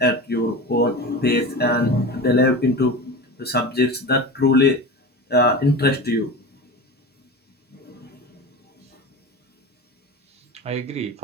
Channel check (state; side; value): normal; both; correlation 0.29